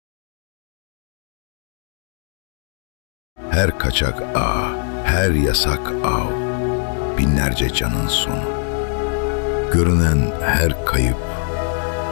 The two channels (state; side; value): silent; right; digital silence